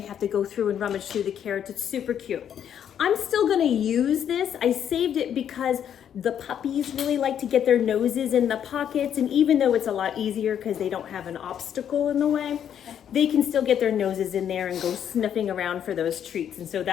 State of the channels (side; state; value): right; quieter; 9.2 dB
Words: have to go through and rummage through the carrots. It's super cute. I'm still gonna use this. I saved it because The puppies really like to get their noses in the pockets, and even though it's a lot easier because they don't have an obstacle in the way, they can still get their noses in there and go sniffing around for those treats, and so